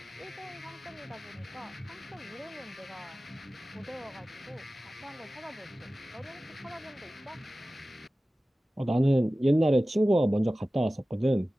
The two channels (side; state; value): both; normal; correlation 0.96